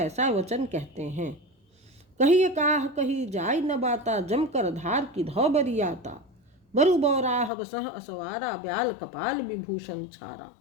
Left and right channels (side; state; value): right; drops out; at 7.5 s